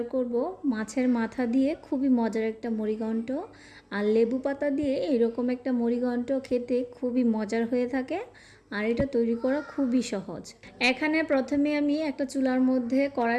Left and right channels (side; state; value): both; identical; correlation 1.00